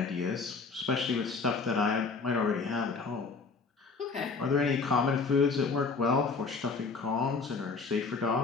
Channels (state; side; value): quieter; right; 4.6 dB